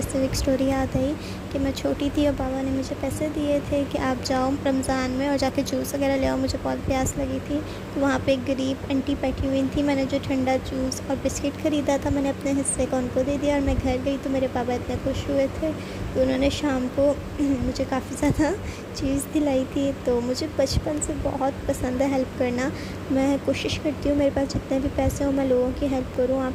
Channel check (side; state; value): both; identical; correlation 1.00